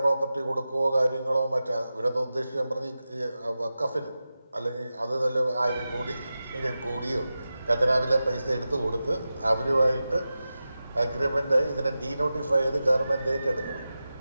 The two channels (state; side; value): inverted; both; correlation -0.93